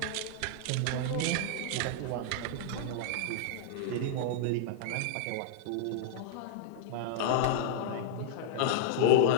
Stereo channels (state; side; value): different; both; correlation -0.01